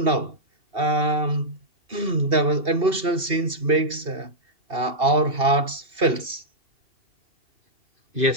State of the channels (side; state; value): left; late; 2.7 ms